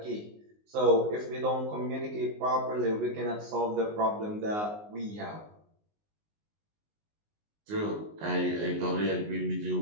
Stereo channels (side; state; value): left; late; 19 ms